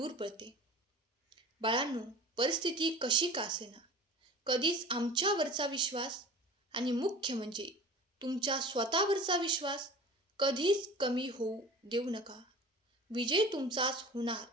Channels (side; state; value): both; normal; correlation 0.39